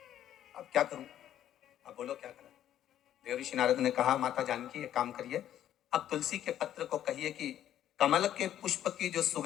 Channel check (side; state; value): right; quieter; 11.2 dB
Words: अब क्या करूं, अब बोलो क्या करूं। देव ऋषि नारद ने कहा, माता जानकी एक काम करिए, अब तुलसी के पत्र को कहिए कि कमल के पुष्प की जो